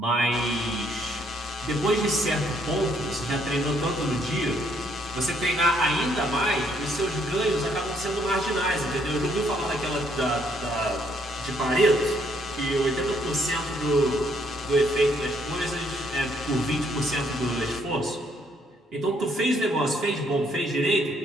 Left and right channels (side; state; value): both; normal; correlation 0.69